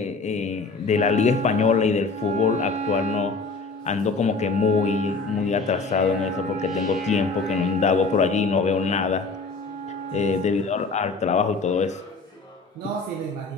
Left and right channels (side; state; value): right; quieter; 4.0 dB